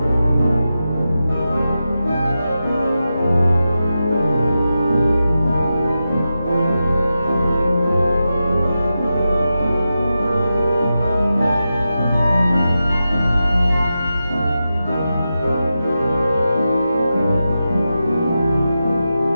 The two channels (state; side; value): inverted; both; correlation -0.90